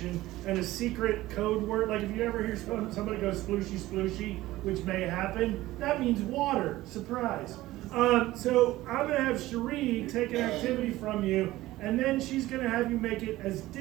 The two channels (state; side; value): quieter; left; 16.9 dB